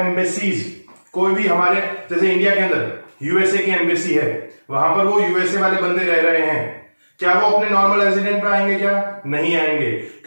कोई भी हमारे जैसे इंडिया के अंदर यूएसए की एम्बेसी है, वहां पर वो यूएसए वाले बंदे रह रहे हैं, क्या वो अपने नॉर्मल रेजिडेंट पे आएंगे क्या? नहीं आएंगे,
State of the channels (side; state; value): both; inverted; correlation -1.00